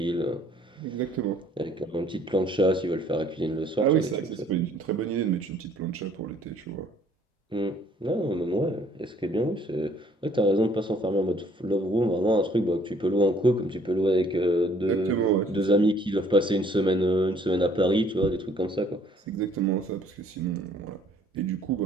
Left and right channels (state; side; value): normal; both; correlation 0.60